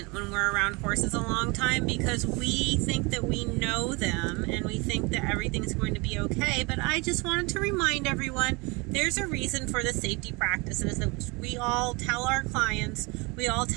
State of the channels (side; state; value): left; quieter; 27.2 dB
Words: when we're around horses a long time because we think that we know them and we think that everything's going to be okay. But I just wanted to remind everyone there's a reason for the safety practices that we all tell our clients, we all